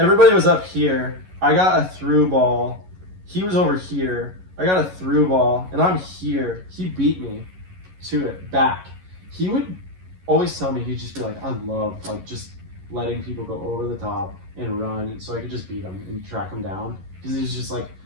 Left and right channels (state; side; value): late; left; 11 ms